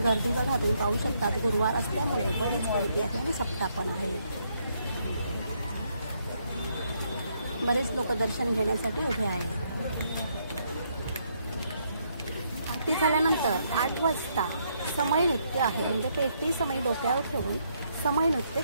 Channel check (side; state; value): both; inverted; correlation -0.74